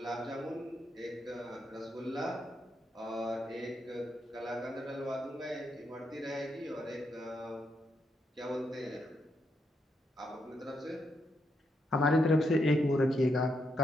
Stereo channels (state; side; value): normal; both; correlation 0.80